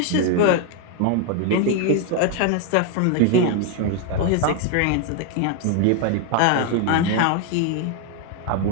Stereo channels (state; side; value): different; both; correlation 0.00